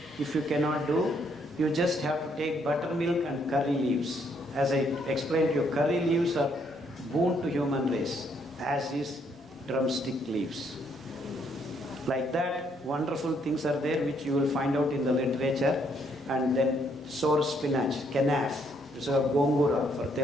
if you cannot do, you just have to take buttermilk and curry leaves. As I explained to you, curry leaves are boon to human race, as is drumstick leaves. Like that, wonderful things are there which you will find out in the literature. And then sour spinach, kenaf, it's a gongura for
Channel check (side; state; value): both; normal; correlation 0.70